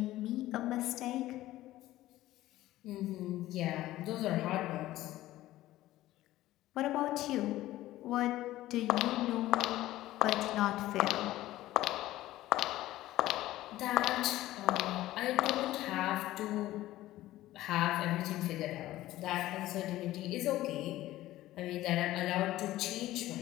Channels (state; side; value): quieter; right; 15.6 dB